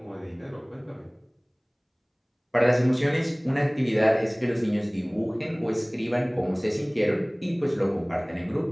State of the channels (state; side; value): identical; both; correlation 1.00